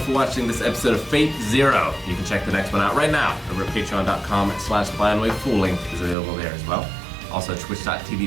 watching this episode of Fate Zero. You can check the next one out right now over at patreon.com/blindwave. Full link is available there as well. Also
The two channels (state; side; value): drops out; left; at 6.2 s